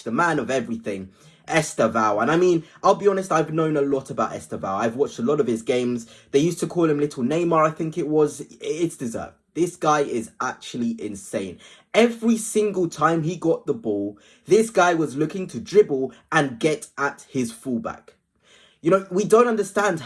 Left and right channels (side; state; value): both; identical; correlation 1.00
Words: the man of everything, Estevao. And I mean, I'll be honest, I've known a lot about Estevao. I've watched a lot of his games. They used to call him Little Neymar, I think it was. It's deserved. This guy is actually insane. Every single time he got the ball, this guy was looking to dribble and get at his fullback. We don't understand